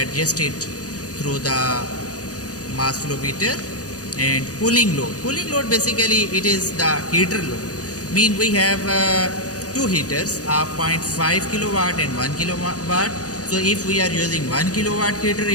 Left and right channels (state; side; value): late; right; 0.67 ms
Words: through the mass flow meter. And cooling load basically it is the heater load. Mean we have 2 heaters of 0.5 kilowatt and 1 kilowatt. So if we are using 1 kilowatt heater,